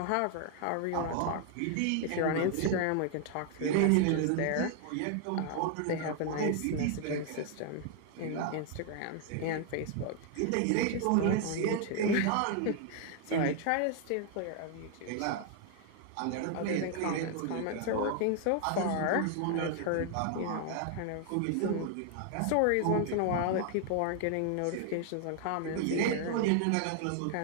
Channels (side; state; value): both; different; correlation 0.00